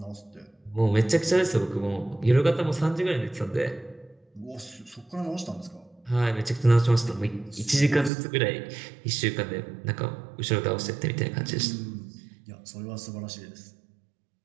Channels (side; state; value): left; drops out; at 8.1 s